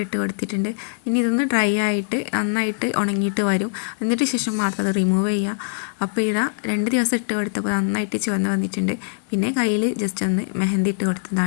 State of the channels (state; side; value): silent; right; digital silence